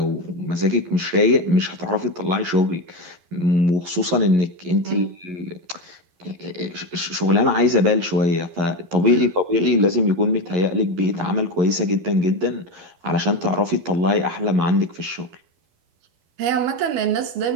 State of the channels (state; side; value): late; left; 11 ms